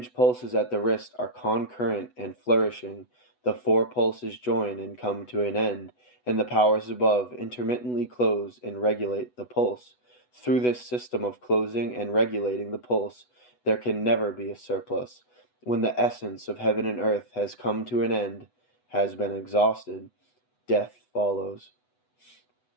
pulses at the wrist are concurrent and flourishing, the four pulses join and come to an end, and the powers above intermittently close and regulate the pulse. Through this system of closing and regulating the pulse, there can never be a surplus. When the essence of heaven and earth has come to an end, has been exhausted, death follows.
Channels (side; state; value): right; late; 8.1 ms